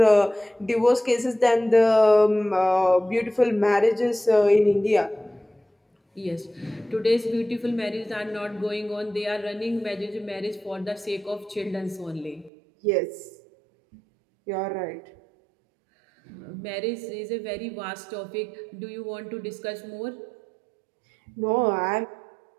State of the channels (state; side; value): drops out; left; at 12.5 s